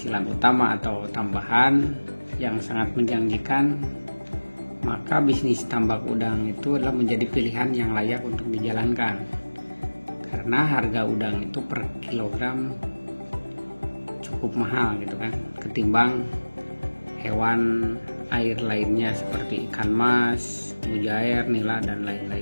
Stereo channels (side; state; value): both; inverted; correlation -1.00